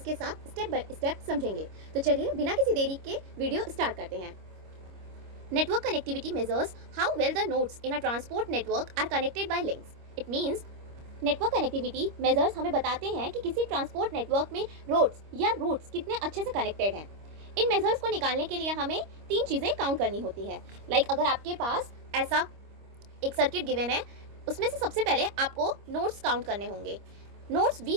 के साथ स्टेप बाय स्टेप समझेंगे। तो चलिए बिना किसी देरी के वीडियो स्टार्ट करते हैं। Network connectivity measures how well the nodes in a transport network are connected by links. It means network connectivity measures हमें बताते हैं कि किसी ट्रांसपोर्ट नेटवर्क में रोड्स या रूट्स कितने अच्छे से कनेक्टेड हैं। इन मेजर्स को निकालने के लिए हमें तीन चीज़ें काउंट करनी होती हैं। अगर आपके पास ऐसा एक सर्किट गिवन है, उसमें से सबसे पहले आपको नोड्स काउंट करने होंगे। नोड्स वी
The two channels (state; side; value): late; left; 25 ms